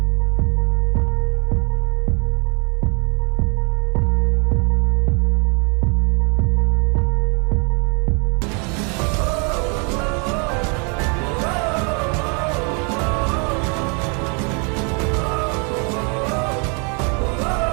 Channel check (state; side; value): quieter; left; 35.5 dB